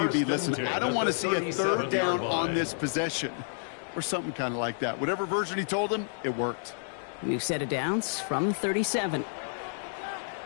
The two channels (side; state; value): right; silent; digital silence